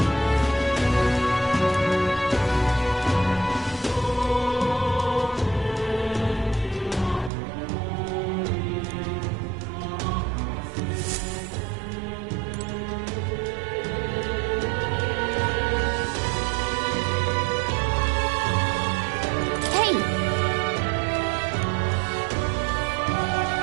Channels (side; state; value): left; drops out; at 7.3 s